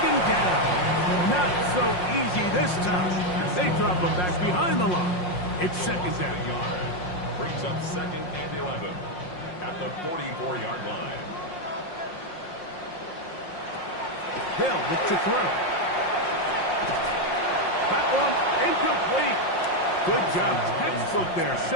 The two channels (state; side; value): late; right; 5.6 ms